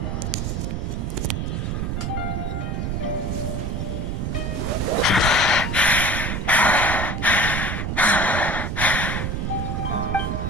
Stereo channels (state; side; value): noise; right; rumble, 1 dB below the sound